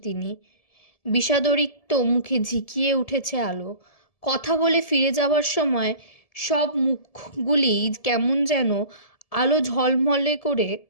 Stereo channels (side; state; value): right; late; 1.7 ms